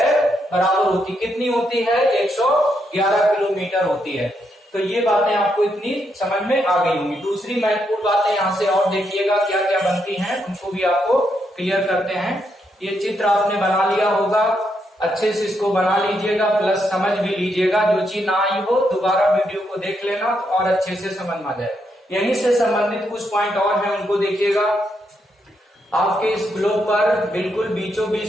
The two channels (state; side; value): normal; both; correlation 0.79